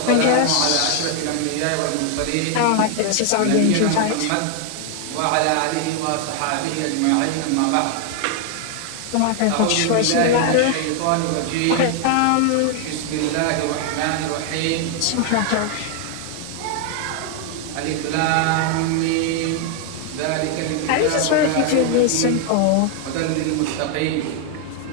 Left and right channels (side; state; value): both; different; correlation 0.00